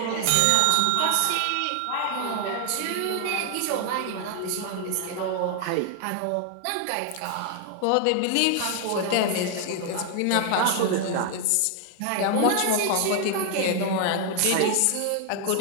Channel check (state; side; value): different; both; correlation 0.00